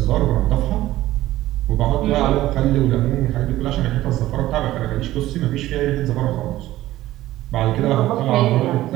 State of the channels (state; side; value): quieter; left; 15.5 dB